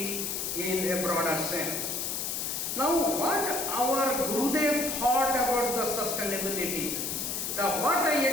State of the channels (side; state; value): left; noise; hiss, 2 dB below the sound